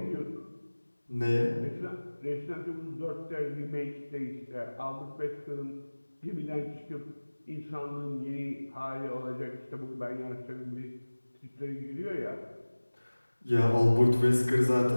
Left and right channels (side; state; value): both; inverted; correlation -1.00